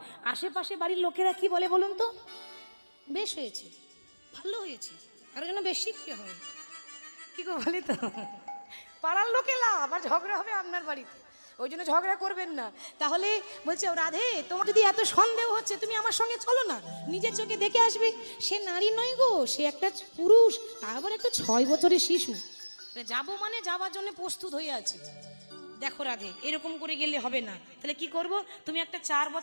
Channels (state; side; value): inverted; both; correlation -1.00